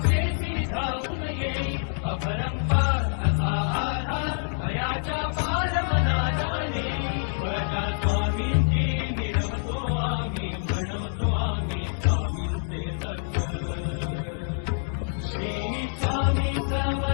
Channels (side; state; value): right; silent; digital silence